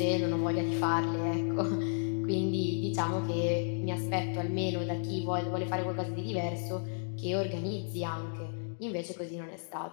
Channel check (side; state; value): right; silent; digital silence